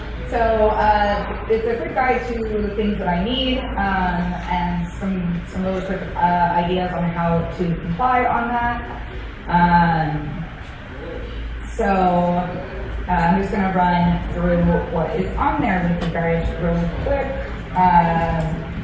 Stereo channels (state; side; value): identical; both; correlation 1.00